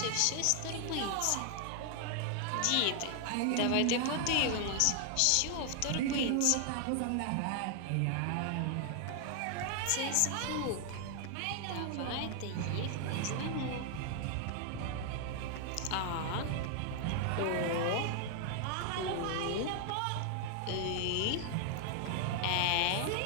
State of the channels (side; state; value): both; different; correlation 0.00